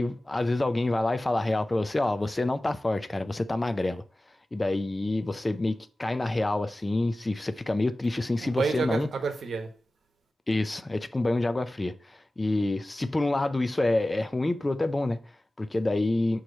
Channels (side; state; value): both; normal; correlation 0.96